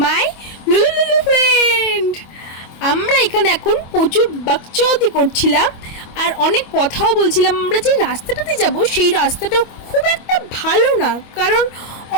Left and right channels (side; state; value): right; late; 25 ms